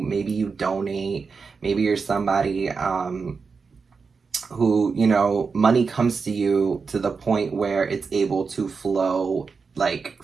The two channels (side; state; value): left; quieter; 5.0 dB